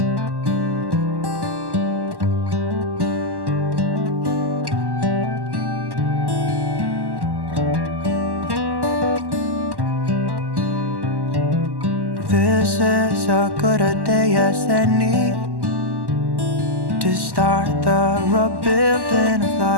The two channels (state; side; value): late; left; 1.1 ms